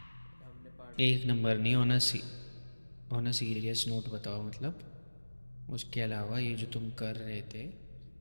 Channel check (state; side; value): inverted; both; correlation -1.00